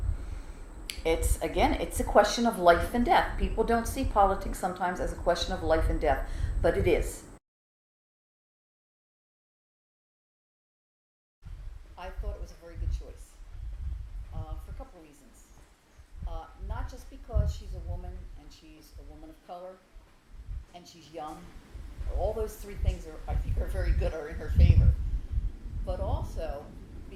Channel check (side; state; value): both; identical; correlation 1.00